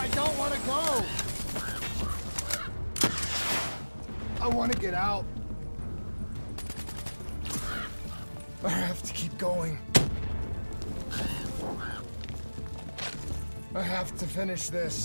don't want to go. I want to get out. I have to keep going. I have to finish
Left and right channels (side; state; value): both; inverted; correlation -1.00